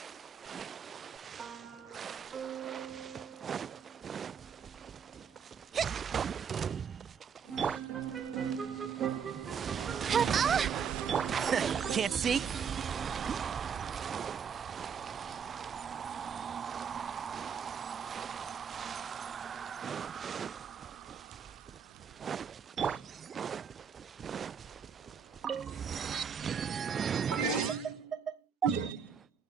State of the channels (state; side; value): quieter; left; 7.0 dB